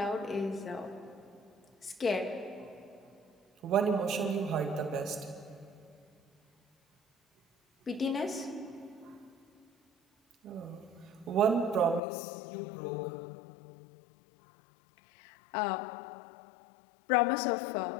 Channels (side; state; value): right; drops out; at 12.0 s